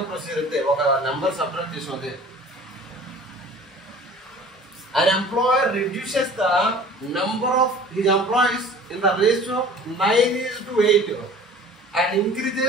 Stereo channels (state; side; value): normal; both; correlation 0.46